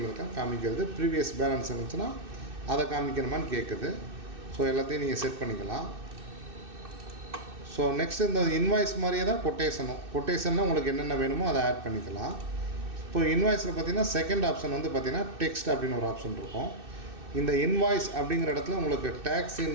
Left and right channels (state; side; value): late; left; 2.6 ms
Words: இருக்க காமிக்கிறது. ப்ரீவியஸ் பேலன்ஸ் இருந்துச்சுன்னா அதை காமிக்கணுமான்னு கேட்குது. எல்லாத்தையும் நீங்கள் செட் பண்ணிக்கலாம். நெக்ஸ்ட் இந்த இன்வாய்ஸ் மாதிரியே தான் கொட்டேஷன்னா உங்களுக்கு என்னென்ன வேணுமோ அதை ஆட் பண்ணிக்கலாம். இப்போ இன்வாய்ஸில் பார்த்தீங்கன்னா செகண்ட் ஆப்ஷன் வந்து பார்த்தீங்கன்னா டெக்ஸ்ட் அப்படின்னு ஒரு ஆப்ஷன் இருக்கும். இந்த இன்வாய்ஸ் அப்படிங்கிற இடத்துல உங்களுக்கு டேக்ஸ்